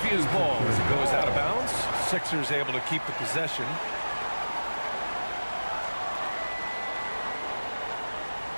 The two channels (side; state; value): both; inverted; correlation -1.00